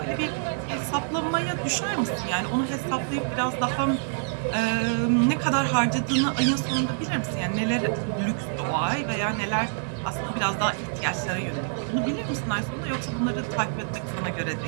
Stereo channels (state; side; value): silent; left; 61 dB below the other